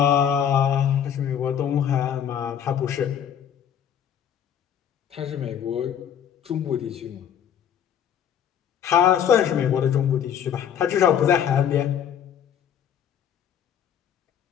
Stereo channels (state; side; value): quieter; right; 8.9 dB